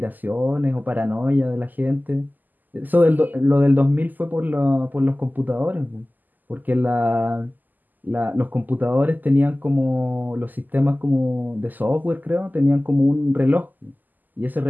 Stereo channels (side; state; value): left; late; 0.085 ms